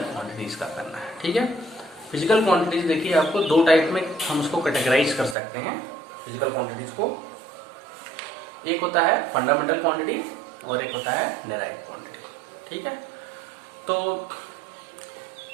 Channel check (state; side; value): drops out; left; at 5.4 s